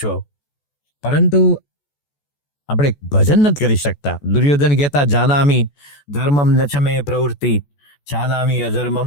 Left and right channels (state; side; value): late; right; 14 ms